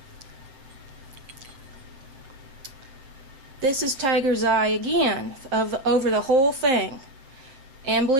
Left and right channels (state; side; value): late; left; 7.6 ms